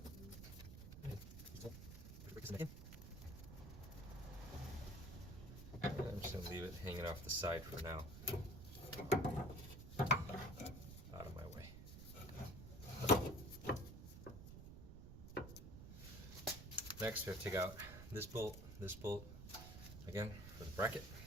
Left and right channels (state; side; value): noise; right; rumble, 11 dB below the sound